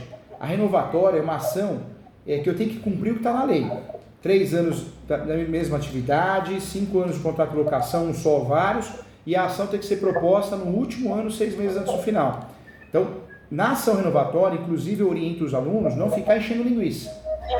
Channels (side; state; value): both; identical; correlation 1.00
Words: A renovatória é uma ação que eu tenho que cumprir o que está na lei. 3 anos da mesma atividade, 5 anos de contrato de locação, um só ou vários, e a ação tem que ser proposta no último ano, 6 meses antes do final. Então, na ação renovatória, inclusive eu oriento os alunos não ficar enchendo linguiça.